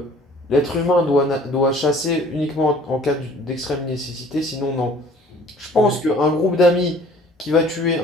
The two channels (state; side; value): normal; both; correlation 0.53